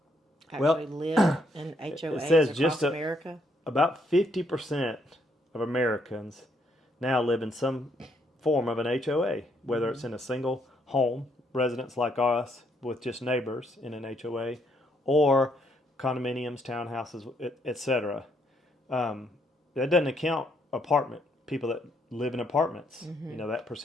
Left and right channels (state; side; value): normal; both; correlation 0.72